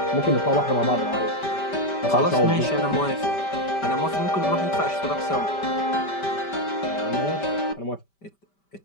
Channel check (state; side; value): late; right; 5.1 ms